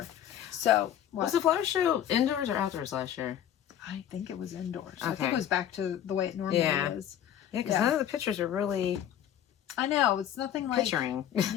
So, was the flower show indoors or outdoors last year? I think it was indoors. Okay. I think it was back to the way it normally is. Yeah, because none of the pictures are really... I know, it's nothing like... Picturing.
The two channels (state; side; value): quieter; right; 10.3 dB